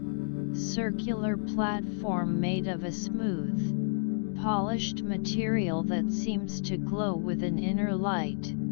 circular platform made of a smooth, polished material that seems to glow with an inner light.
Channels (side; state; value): right; silent; digital silence